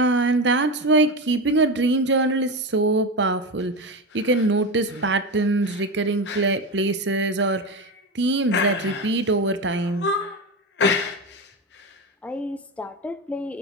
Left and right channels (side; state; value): both; normal; correlation 0.19